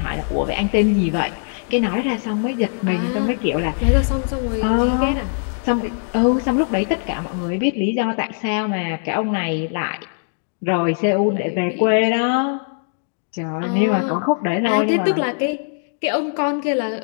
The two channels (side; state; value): right; silent; digital silence